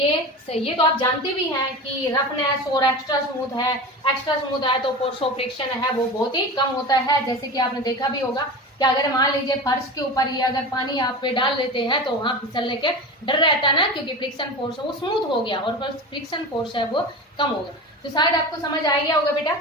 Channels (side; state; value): both; normal; correlation 0.29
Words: तो आप जानते भी हैं कि रफनेस और एक्स्ट्रा स्मूथ है। एक्स्ट्रा स्मूथ है तो फोर्स ऑफ फ्रिक्शन है वो बहुत ही कम होता है। जैसे कि आपने देखा भी होगा कि अगर मान लीजिए फर्श के ऊपर ही अगर पानी आप पे डाल देते हैं तो वहां फिसलने के डर रहता है ना, क्योंकि फ्रिक्शन फोर्स वो स्मूथ हो गया और फ्रिक्शन फोर्स है वो कम हो गया। तो शायद आपको समझ आ गया होगा बेटा।